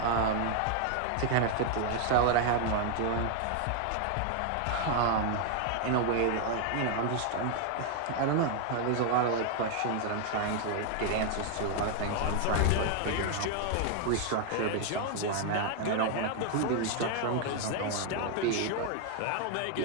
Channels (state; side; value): different; both; correlation 0.00